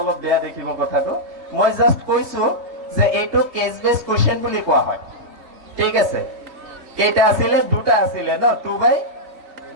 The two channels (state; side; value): late; left; 3.2 ms